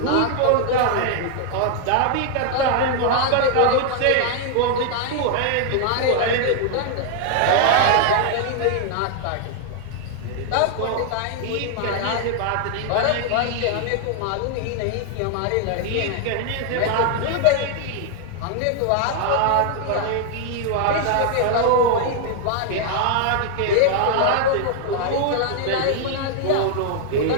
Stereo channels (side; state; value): both; different; correlation 0.00